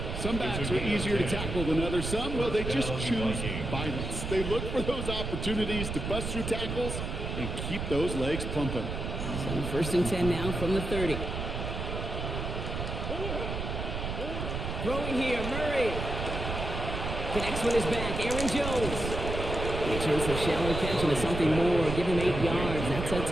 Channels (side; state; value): right; noise; rumble, 4 dB below the sound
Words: Some backs are easier to tackle than others. Some, well, they just choose violence. They look for those opportunities to bust through tackles and keep those legs pumping. So 1st and 10 now from the 30. Throwing here, Murray. Connects with his back, Aaron Jones. He turns the shallow catch into something more. Give him 8 yards. That sets